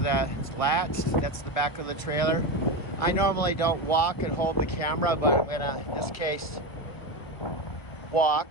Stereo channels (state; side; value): late; right; 1.3 ms